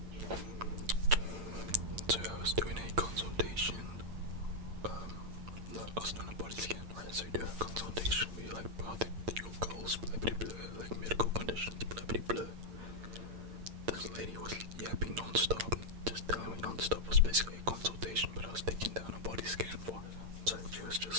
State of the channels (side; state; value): left; late; 8.8 ms